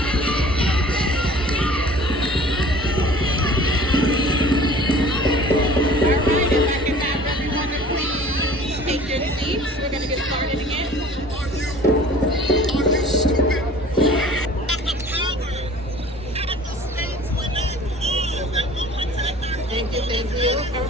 We're going to get started again. Are you stupid? Thank you.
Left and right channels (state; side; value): normal; both; correlation 0.47